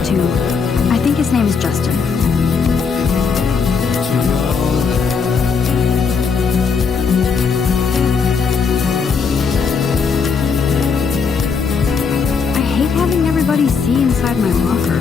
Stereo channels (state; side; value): quieter; right; 5.6 dB